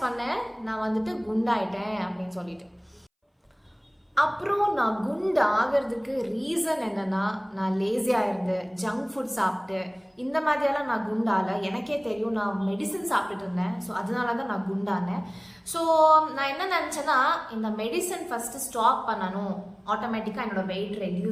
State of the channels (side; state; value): both; identical; correlation 1.00